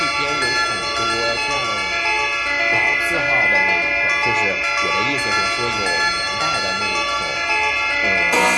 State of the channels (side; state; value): both; identical; correlation 1.00